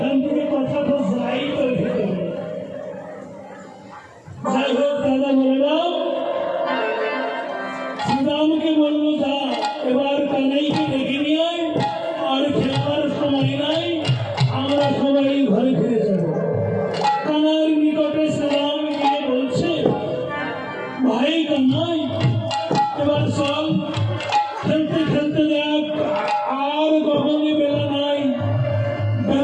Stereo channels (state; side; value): identical; both; correlation 1.00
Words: থেকে কথাটা যাই তো ভিতরে। যাই হোক দাদা বললাম, শ্রীরামকে বললো যা এবার কানাইকে ডেকে নিয়ে আয়, আর খেলার সময় নাই, আমরা সবাই ঘরে ফিরে যাব। কানার নিকটে শ্রীরাম গিয়ে বলছে, ভাই কানাই এবার চল, খেলতে খেলতে দেখ আর গগনে বেলা নাই,